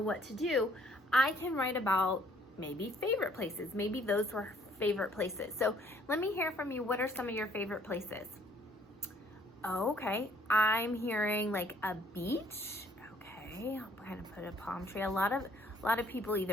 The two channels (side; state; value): both; normal; correlation 0.61